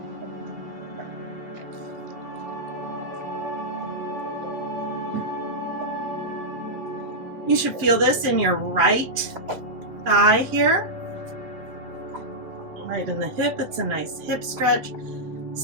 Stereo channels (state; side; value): late; left; 7.7 ms